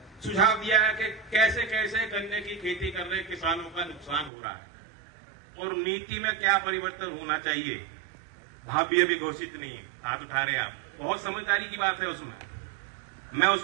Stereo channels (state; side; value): drops out; left; at 4.3 s